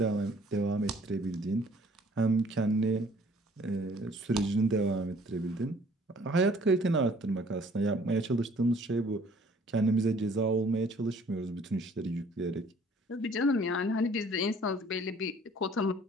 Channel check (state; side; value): normal; both; correlation 0.57